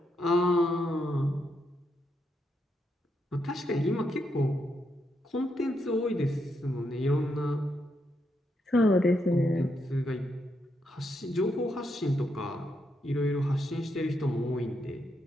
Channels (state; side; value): normal; both; correlation 0.80